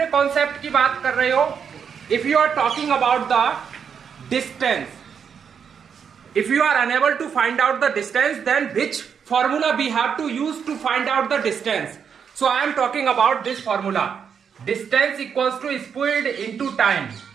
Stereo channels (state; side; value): quieter; left; 7.1 dB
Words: कॉन्सेप्ट की बात कर रहे हो, if you are talking about the distance, if you are unable to find out the distance then which formula we have to use to find out the distance? So I am talking about this formula, distance equals to speed into time,